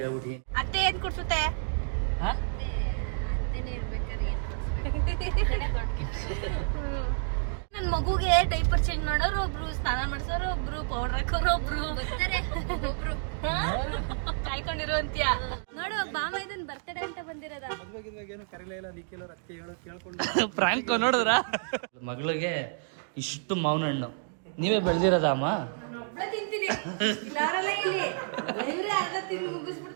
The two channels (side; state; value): left; silent; digital silence